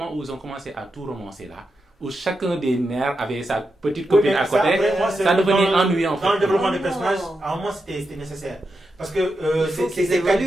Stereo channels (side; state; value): both; normal; correlation 0.87